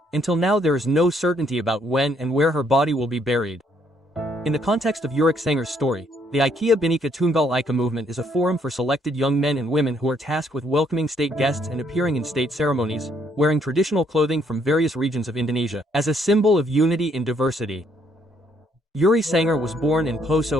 until now there is no certainty about when and where her body will be buried. In the context of Eureka Sanger's story, the IKEA Bhinneka Tunggal Ika movement is a forum for selected young men and women who are tasked with welcoming state guests and appearing in state ceremonies, wearing traditional clothing from various regions of Indonesia, as a symbol of unity in diversity. Eureka Sanger was born in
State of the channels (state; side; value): normal; both; correlation 0.69